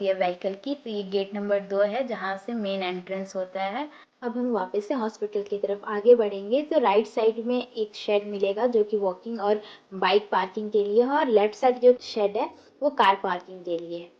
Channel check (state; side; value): identical; both; correlation 1.00